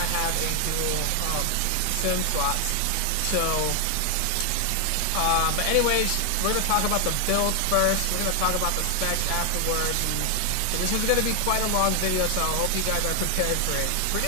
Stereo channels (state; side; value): different; both; correlation 0.00